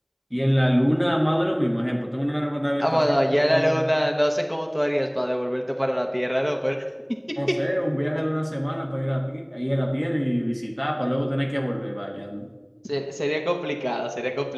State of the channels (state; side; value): identical; both; correlation 1.00